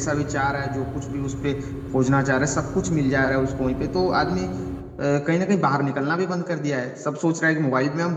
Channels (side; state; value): both; identical; correlation 1.00